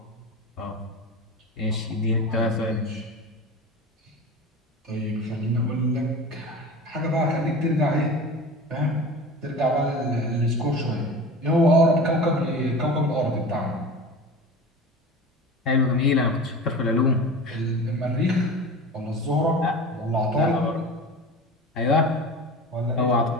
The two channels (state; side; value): normal; both; correlation 0.33